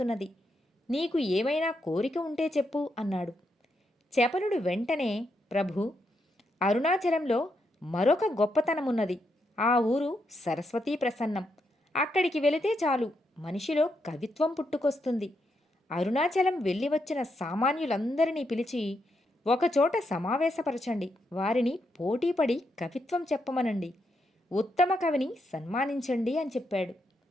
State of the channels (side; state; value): both; normal; correlation 0.81